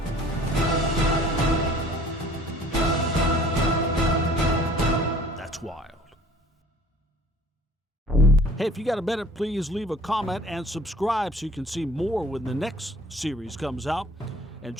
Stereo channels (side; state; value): both; normal; correlation 0.51